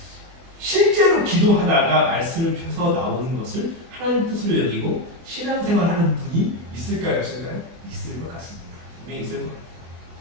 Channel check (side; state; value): left; late; 24 ms